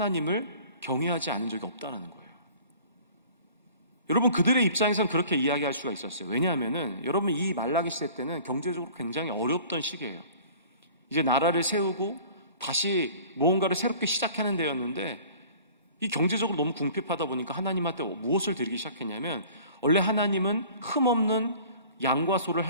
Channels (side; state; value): both; inverted; correlation -0.47